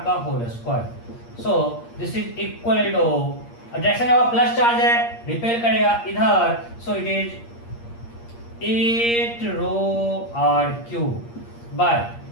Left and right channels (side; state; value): right; late; 8.6 ms